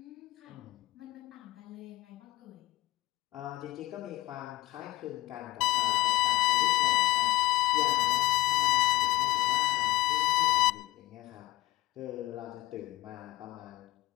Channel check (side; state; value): right; quieter; 18.4 dB